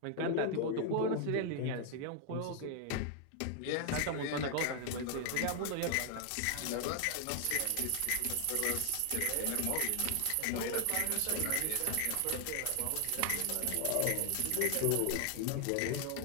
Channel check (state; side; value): different; both; correlation 0.00